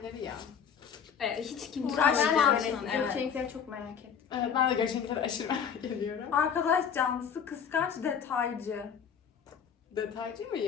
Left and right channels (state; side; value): quieter; right; 7.5 dB